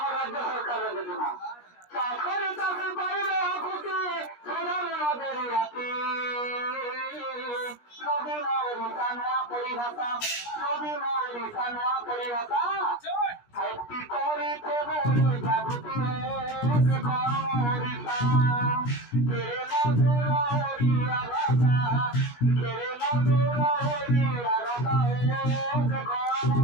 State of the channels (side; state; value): right; late; 17 ms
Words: রাজ্য সরকারের যোজনা চাকরি চাকরি পাইলে খুশি আমাদের রাতে নবীন রিসানোয়া পরিভাষা নবীন রিসানোয়া পরিভাষা একটি করিতে বলি জাগৃতি করিতা কে মধুর হরিয়া ভাষা কে মধুর হরিয়া রসা